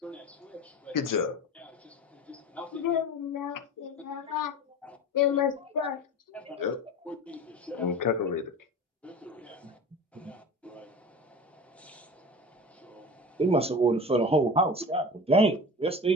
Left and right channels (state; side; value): normal; both; correlation 0.33